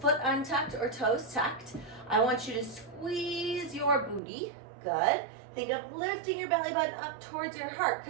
untucked or toes tucked, I want you to squeeze your booty. Good. Think of lifting your belly button up towards your heart,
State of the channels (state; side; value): drops out; left; at 4.2 s